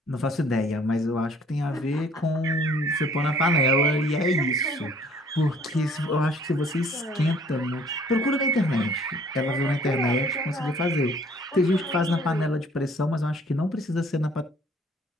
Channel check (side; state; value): both; normal; correlation 0.57